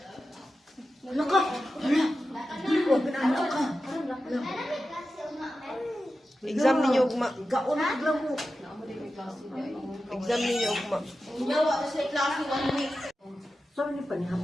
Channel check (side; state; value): both; normal; correlation 0.92